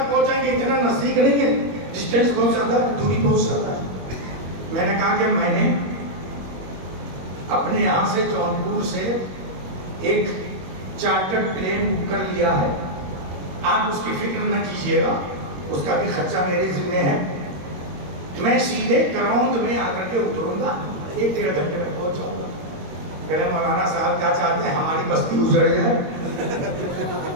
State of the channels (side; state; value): left; late; 21 ms